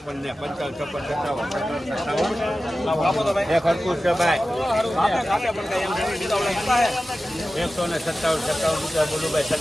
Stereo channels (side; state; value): both; normal; correlation 0.95